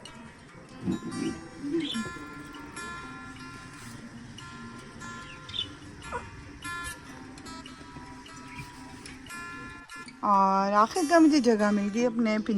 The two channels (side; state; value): both; identical; correlation 1.00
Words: और आखिरकार मुझे जगह मिल गई अपने